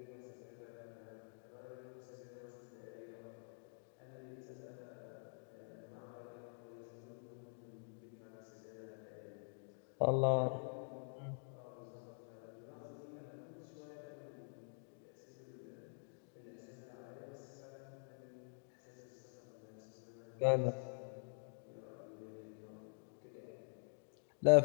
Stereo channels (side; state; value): right; silent; digital silence